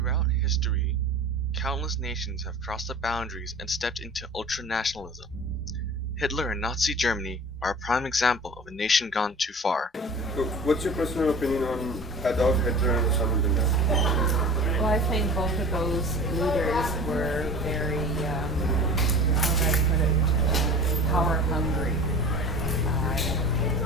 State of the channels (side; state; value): both; normal; correlation 0.38